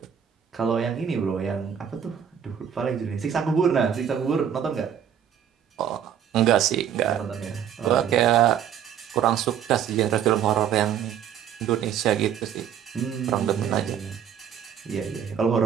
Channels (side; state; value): left; quieter; 8.9 dB